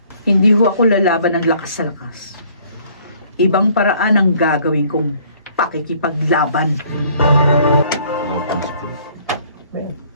Hindi ho ako lalaban ng lakas sa lakas. Ibang paraan ang gagawin kong pakikipaglaban.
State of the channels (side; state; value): both; inverted; correlation -0.59